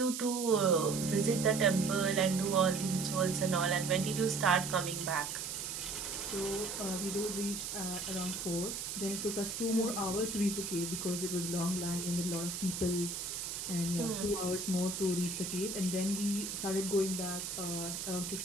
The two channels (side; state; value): right; noise; hiss, 5 dB below the sound